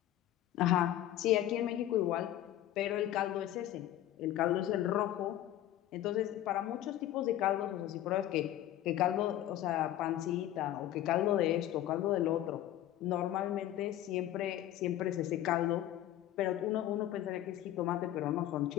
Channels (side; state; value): right; quieter; 13.0 dB